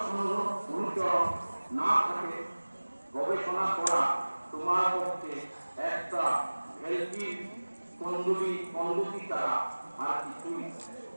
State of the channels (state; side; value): inverted; both; correlation -1.00